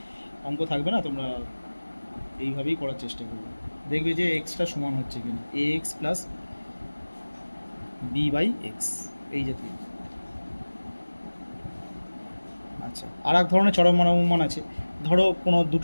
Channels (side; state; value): both; inverted; correlation -1.00